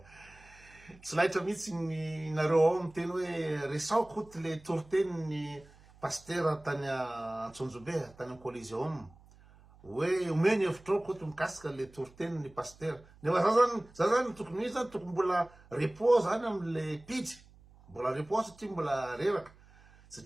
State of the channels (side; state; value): right; noise; hum, 25 dB below the sound